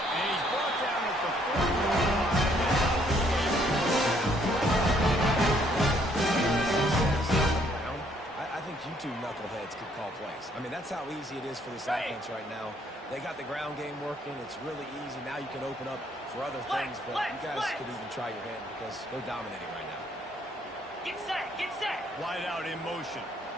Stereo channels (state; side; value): normal; both; correlation 0.67